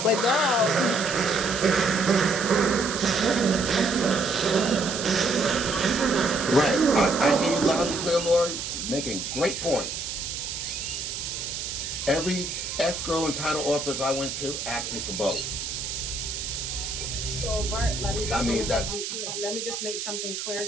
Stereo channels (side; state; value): right; noise; hiss, 5 dB below the sound